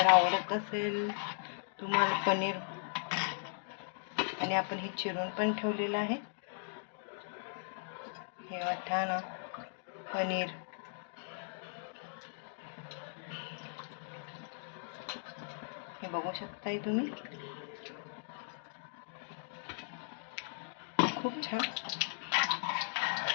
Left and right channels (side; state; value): right; silent; digital silence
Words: आवडत असेल तुम्हाला पनीर, आणि आपण हे चिरून पण ठेवलेलं आहे. हे वाटाणा पनीर. हे बघू शकताय तुम्ही. खूप छान.